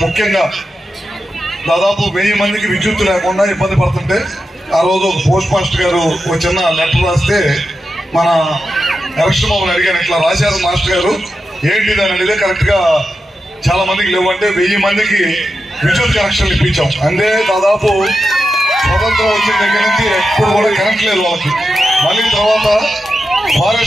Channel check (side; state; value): both; normal; correlation 0.90